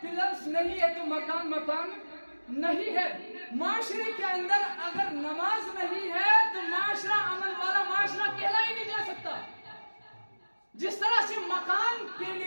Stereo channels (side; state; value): both; inverted; correlation -1.00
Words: پلرز نہیں ہے تو مکان نہیں ہے. معاشرے کے اندر اگر نماز نہیں ہے تو معاشرہ عمل والا معاشرہ کہلا ہی نہیں جا سکتا. جس طرح سے مکان کے